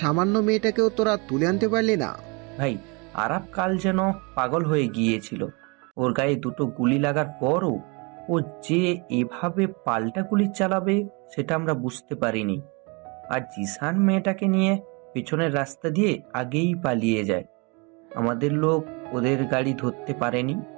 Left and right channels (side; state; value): left; quieter; 30.3 dB